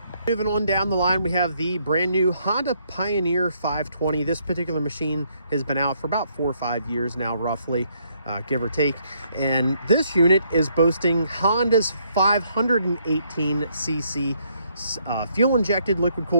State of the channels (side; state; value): both; inverted; correlation -0.71